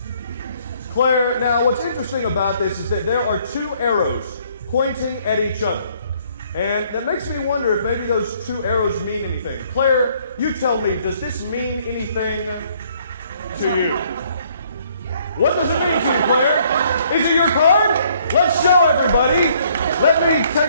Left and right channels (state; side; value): inverted; both; correlation -0.64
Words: Claire, now what's interesting about this is that there are 2 arrows pointing at each other. And that makes me wonder if maybe those 2 arrows mean anything. Claire, you tell me, does this mean anything to you? What does it mean to you, Claire? Is it your card? Let's show everybody. Let me